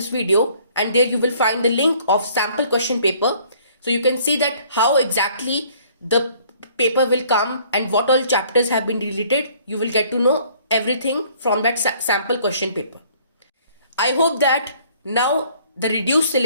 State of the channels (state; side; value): inverted; both; correlation -0.58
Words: video and there you will find the link of sample question paper. So you can see that how exactly the paper will come and what all chapters have been deleted. You will get to know everything from that sample question paper. I hope that now the reduced